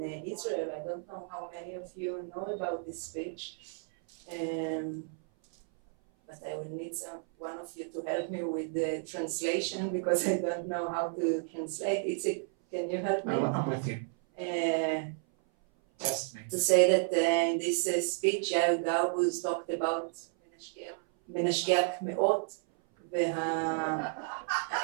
Israel. I don't know how many of you know about this speech. But I will need one of you to help me with the translation, because I don't know how to translate. Can you help me? I'm with you. Test me. To say that in this speech, Yair Garbuz talked about מנשגח מאות,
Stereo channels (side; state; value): left; silent; 56 dB below the other